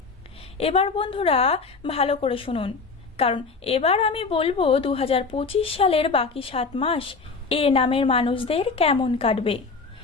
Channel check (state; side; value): quieter; right; 4.5 dB